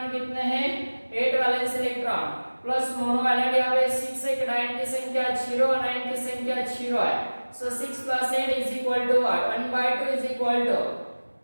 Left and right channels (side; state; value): both; inverted; correlation -1.00